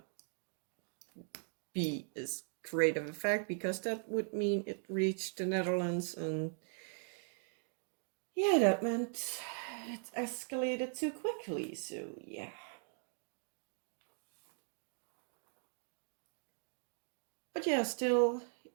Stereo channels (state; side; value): silent; left; 51 dB below the other